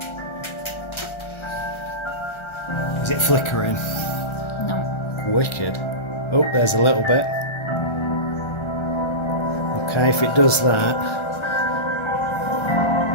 now. Is it flickering? No. Wicked. Oh, there's a little bit. Okay, if it does that.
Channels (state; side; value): late; right; 1.3 ms